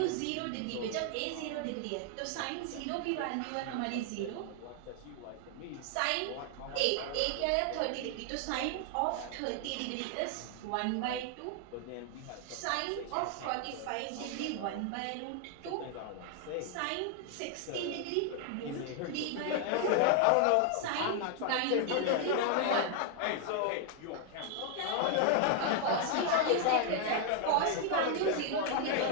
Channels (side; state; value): both; different; correlation 0.00